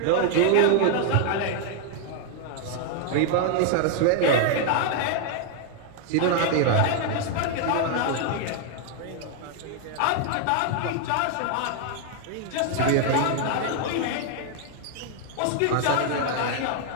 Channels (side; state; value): both; different; correlation 0.00